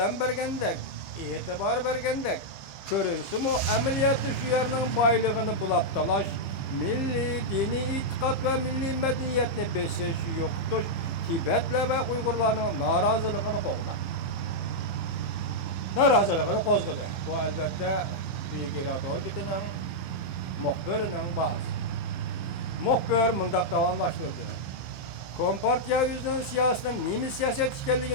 bergendek, itibar bergendek, görünsü mu ameliyatı şu yerinin baylığını bulap dalaş, milli, dini itikat ve milli medeniyetini besiş yoktuş, Tibet'le ve Uygurların narazılığını kovdu. Narazılığını kozgudu. Bu elbette büyük iradol bitinin muhbirinin bazı. Muhbir mındak davamlaştırdı. Kompartiya yüzünün siyasetinin nemi siyaset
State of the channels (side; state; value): right; late; 15 ms